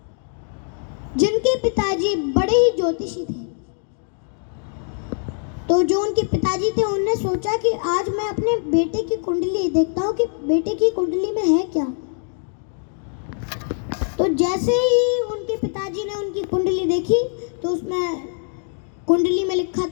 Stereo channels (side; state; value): right; silent; 56 dB below the other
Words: जिनके पिताजी बड़े ही ज्योतिषी थे। तो जो उनके पिताजी थे उन्होंने सोचा कि आज मैं अपने बेटे की कुंडली देखता हूँ कि बेटे की कुंडली में है क्या। तो जैसे ही उनके पिताजी ने उनकी कुंडली देखी तो उसमें कुंडली में लिखा